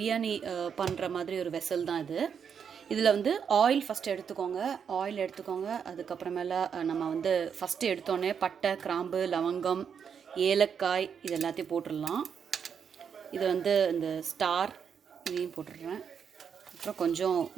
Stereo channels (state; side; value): quieter; left; 7.2 dB